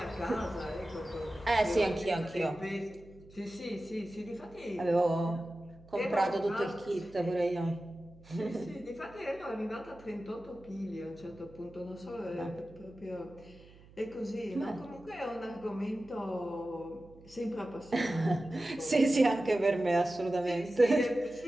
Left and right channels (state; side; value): noise; right; hum, 23 dB below the sound